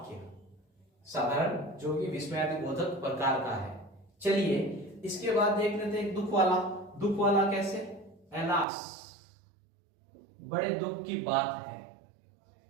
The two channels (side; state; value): left; drops out; at 8.7 s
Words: साधारण जो कि विस्मयादिबोधक प्रकार का है। चलिए इसके बाद देख लेते हैं एक दुख वाला। दुख वाला कैसे? एलास, बड़े दुख की बात है।